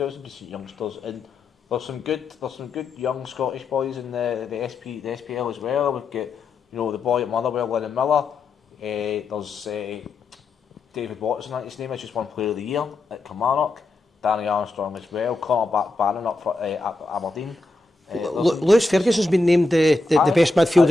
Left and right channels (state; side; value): quieter; right; 3.2 dB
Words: some decent youngsters, and there's some good young Scottish boys in the SPL as well. We've got the boy at Motherwell, Lennon Miller. There's David Watson, I think his name is, just won Player of the Year at Kilmarnock. Danny Armstrong as well. Connor Barron up for Aberdeen. Lewis Ferguson's been named the best